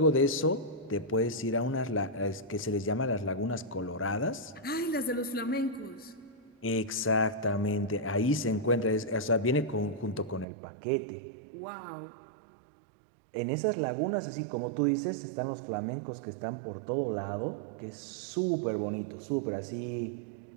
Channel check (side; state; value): left; drops out; at 10.5 s